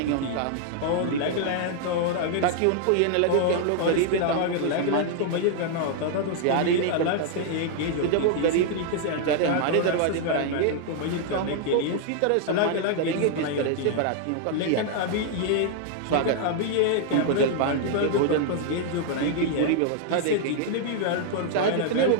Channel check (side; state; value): both; different; correlation -0.01